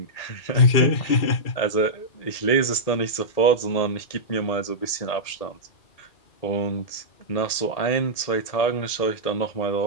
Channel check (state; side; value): late; right; 1.8 ms